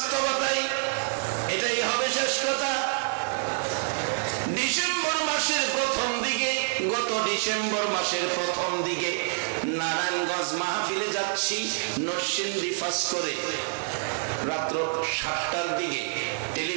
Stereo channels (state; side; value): silent; left; digital silence